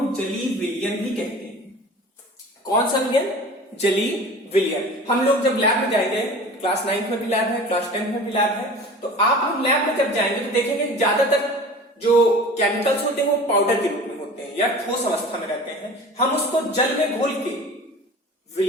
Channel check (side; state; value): both; normal; correlation 0.40